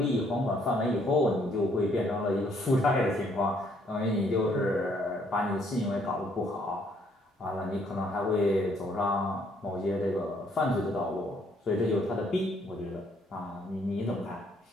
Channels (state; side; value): normal; both; correlation 0.67